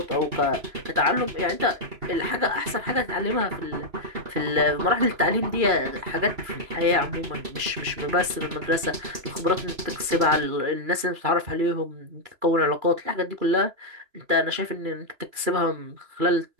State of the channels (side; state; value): left; late; 3.0 ms